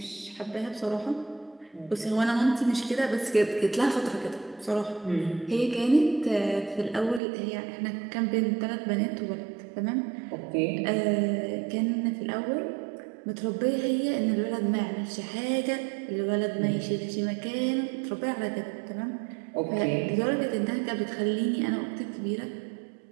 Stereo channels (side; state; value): left; drops out; at 7.2 s